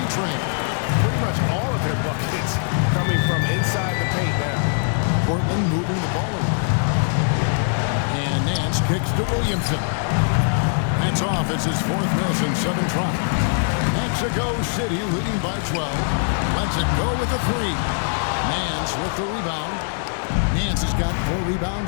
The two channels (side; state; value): right; silent; 57 dB below the other